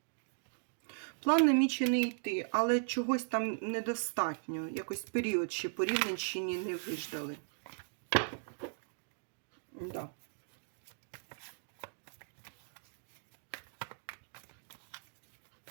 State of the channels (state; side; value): silent; left; digital silence